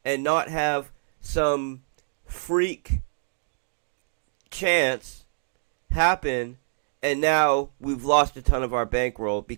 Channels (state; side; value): silent; left; digital silence